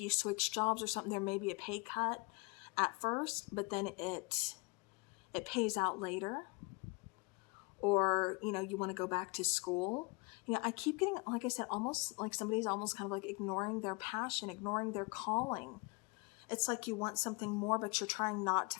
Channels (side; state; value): right; quieter; 28.8 dB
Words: switch jobs or something, there may be a pay cut at first, but then it pays out later. Or, you want to go back to school. I keep getting, like I said, almost like somebody's almost kind of like ignoring their passion, ignoring their calling. It's like you want something more, but you're trying not to